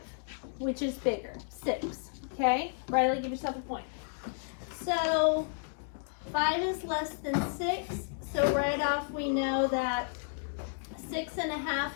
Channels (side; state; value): right; silent; digital silence